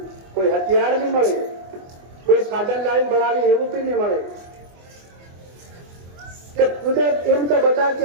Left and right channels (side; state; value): left; late; 24 ms